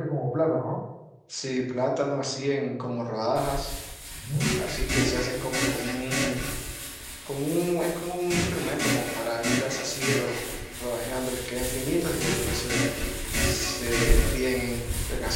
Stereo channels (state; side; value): identical; both; correlation 1.00